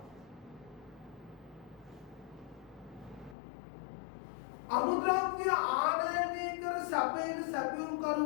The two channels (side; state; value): right; drops out; at 3.4 s